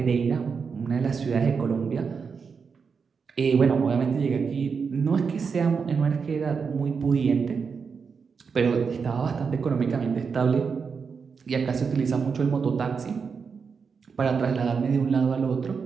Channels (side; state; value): left; quieter; 5.7 dB